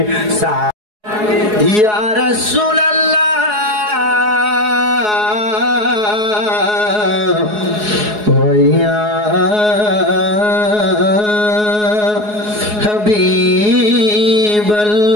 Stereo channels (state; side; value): late; left; 4.8 ms